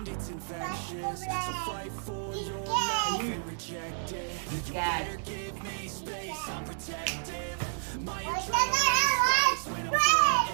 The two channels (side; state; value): left; silent; digital silence